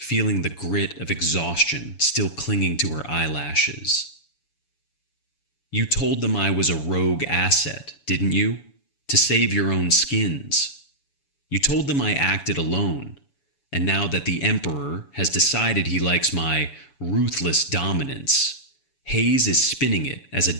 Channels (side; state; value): right; late; 7.1 ms